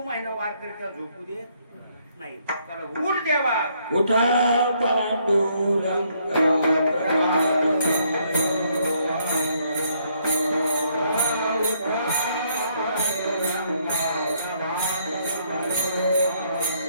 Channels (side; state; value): both; inverted; correlation -0.70